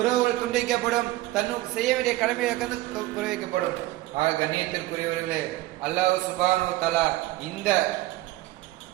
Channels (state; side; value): quieter; left; 17.4 dB